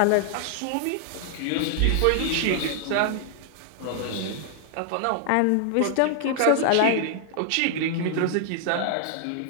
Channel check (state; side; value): different; both; correlation 0.00